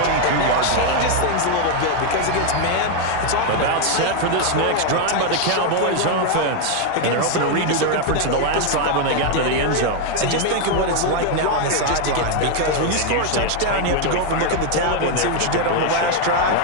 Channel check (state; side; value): different; both; correlation 0.01